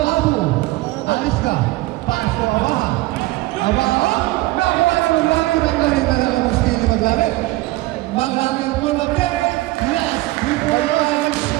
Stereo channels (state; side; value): quieter; left; 19.3 dB